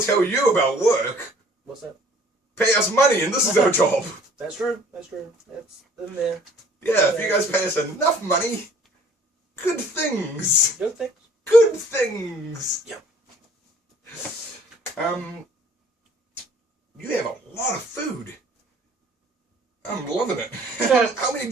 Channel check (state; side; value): normal; both; correlation 0.55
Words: you about work. What's that? Pay us money and this is our job. That's true. That's true. That's in there. Yeah, if you guys pay us enough money, good things. Good things. Good things. Yep. You have a lot of food. I'm loving it. How many